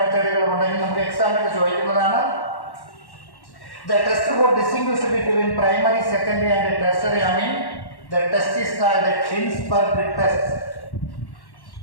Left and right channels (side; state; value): right; late; 1.1 ms